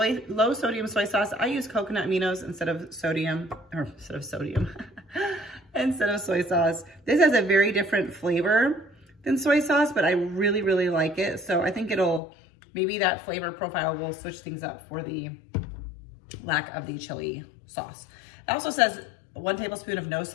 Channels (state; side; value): drops out; right; at 12.2 s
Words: low sodium soy sauce. I use coconut aminos instead of soy sauce. This has a very different flavor than soy sauce, but I really, really like it. So I think maybe that flavor profile will switch things up for the lack of the chili sauce. It also says 1 tablespoon of no